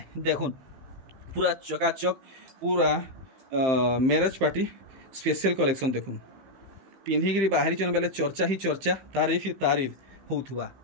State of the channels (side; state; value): left; late; 15 ms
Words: देखुन पूरा चकाचक पूरा मैरिज पार्टी स्पेशल कलेक्शन देखुन पिंधिकी बाहरी चन बेले चर्चा ही चर्चा तारीफ ही तारीफ होउथुवा